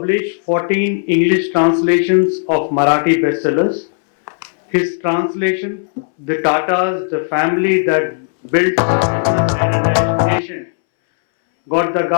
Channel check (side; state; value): right; silent; 69 dB below the other